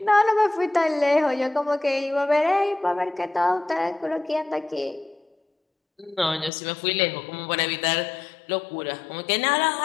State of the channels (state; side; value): drops out; right; at 6.5 s